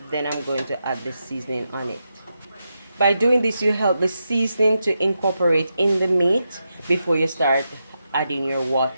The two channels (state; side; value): inverted; both; correlation -0.86